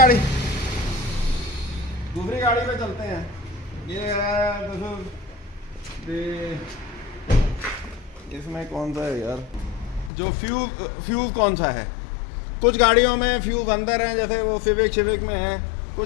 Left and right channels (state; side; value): drops out; right; at 10.1 s